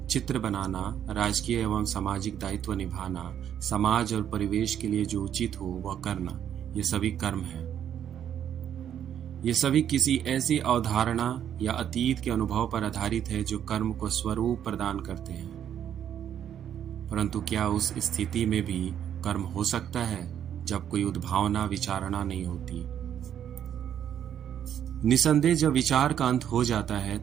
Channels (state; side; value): quieter; left; 9.6 dB